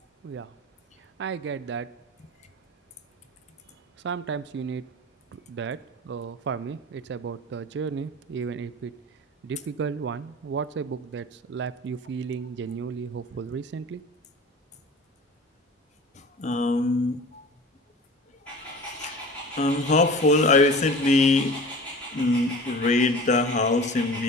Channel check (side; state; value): both; normal; correlation 0.38